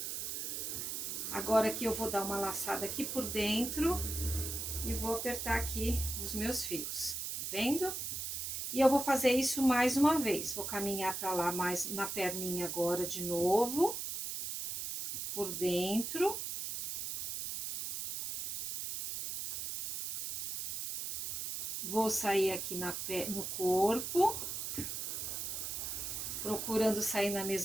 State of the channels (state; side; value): noise; right; hiss, 4 dB below the sound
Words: Agora aqui eu vou dar uma laçada aqui por dentro e vou apertar aqui os meus fios, tá vendo? E eu vou fazer isso mais uma vez. Vou caminhar pra lá mais na perninha agora de novo, por dentro. Vou sair aqui no corpo, procurando sair na